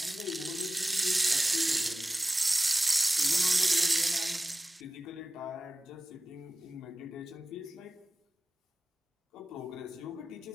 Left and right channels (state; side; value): normal; both; correlation 0.96